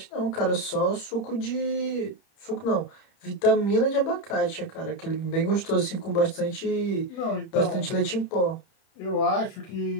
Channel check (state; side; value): late; right; 30 ms